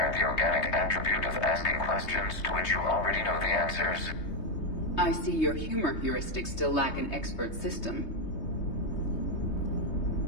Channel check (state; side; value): late; right; 3.2 ms